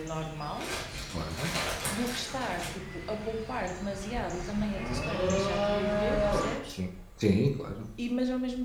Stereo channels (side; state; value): both; identical; correlation 1.00